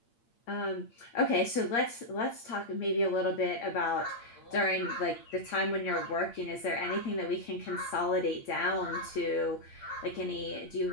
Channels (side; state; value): right; late; 8.6 ms